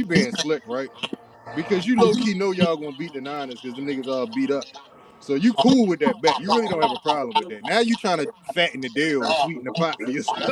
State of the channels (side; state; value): both; identical; correlation 1.00